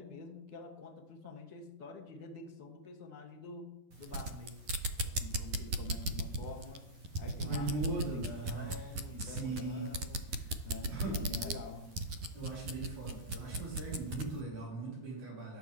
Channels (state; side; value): late; left; 11 ms